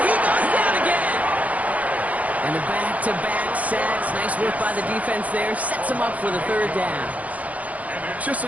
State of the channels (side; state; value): left; late; 0.071 ms